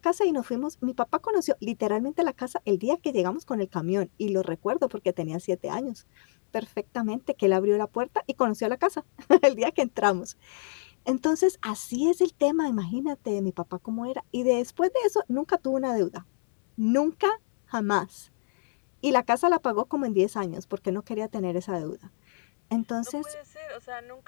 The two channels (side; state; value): right; silent; digital silence